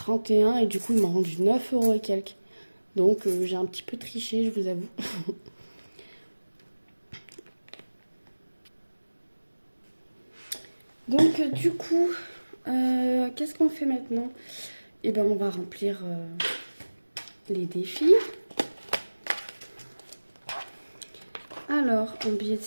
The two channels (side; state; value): both; inverted; correlation -1.00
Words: et du coup, ils m'ont rendu 9 euros et quelques. Donc, j'ai un petit peu triché, je vous avoue. Donc, du coup, qu'est-ce qu'on fait maintenant? Eh ben, on va remplir les défis. Alors, en billet de